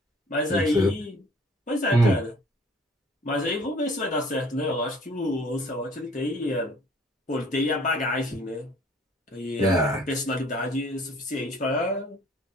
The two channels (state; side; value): normal; both; correlation 0.54